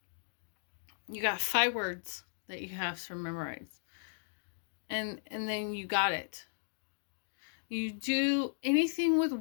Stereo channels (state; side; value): silent; right; digital silence